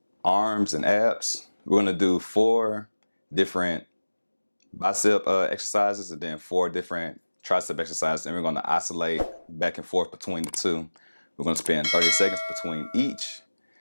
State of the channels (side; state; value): both; inverted; correlation -1.00